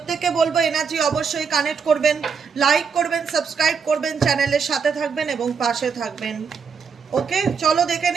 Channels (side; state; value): left; quieter; 6.0 dB